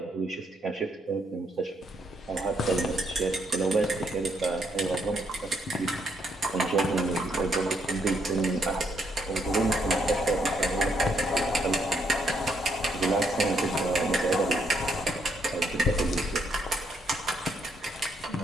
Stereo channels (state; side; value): normal; both; correlation 0.74